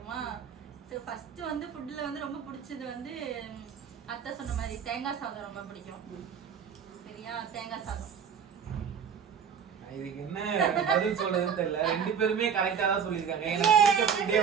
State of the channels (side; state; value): left; quieter; 7.3 dB